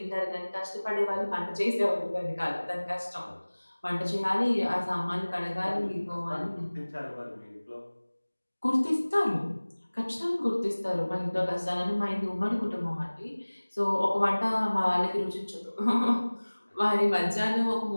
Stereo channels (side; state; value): both; inverted; correlation -1.00